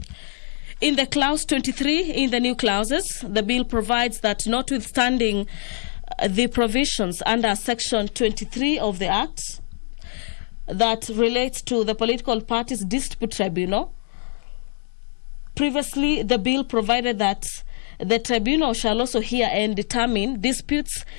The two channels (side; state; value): right; silent; digital silence